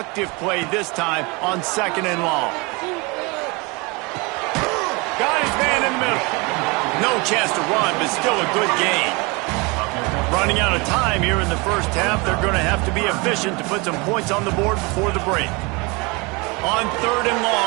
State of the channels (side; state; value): left; quieter; 27.5 dB